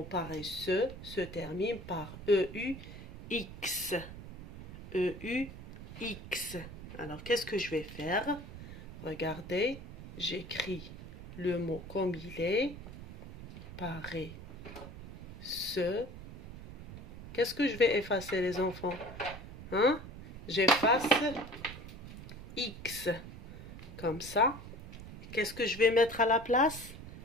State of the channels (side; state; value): right; noise; rumble, 13 dB below the sound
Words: paresseux se termine par EUX. EUX. Alors, qu'est-ce que je vais faire? Regardez, j'écris le mot comme il est. Paresseux. Qu'est-ce que je vais effacer, les enfants? Hein? J'efface X. Comme ça. Qu'est-ce que je vais mettre à la place?